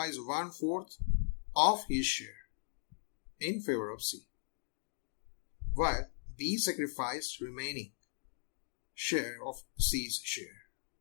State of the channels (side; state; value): right; silent; digital silence